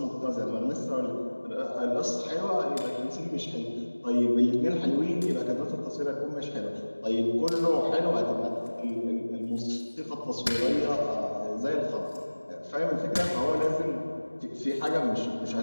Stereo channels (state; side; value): inverted; both; correlation -1.00